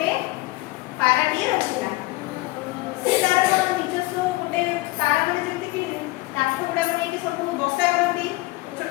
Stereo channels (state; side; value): quieter; right; 21.2 dB